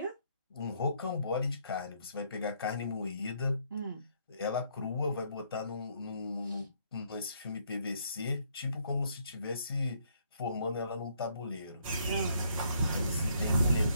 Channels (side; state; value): both; inverted; correlation -0.69